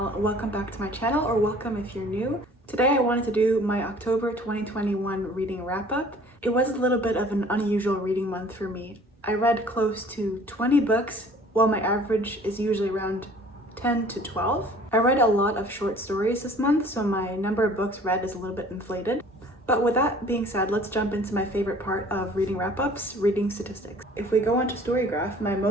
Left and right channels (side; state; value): both; normal; correlation 0.51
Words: Welcome back to my channel, or welcome if you're new. Today I wanted to do my October 2021 reading wrap-up. It was a little bit of an unusual reading month for me. I read close to 20 books, while my average is usually around 10 to 12. I read a lot of short stories this month, so my number of books read is a little bit inflated. But with that being said, let's jump into my favorite part of reading wrap-ups, reading statistics. If we go onto Storygraph, my